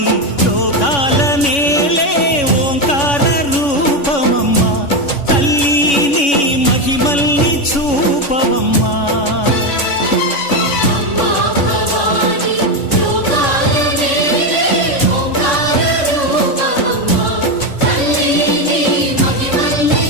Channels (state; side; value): late; right; 3.5 ms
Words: లోకాల నేలే ఓంకార రూపమమ్మా తల్లి నీ మహిమల్ని చూపవమ్మా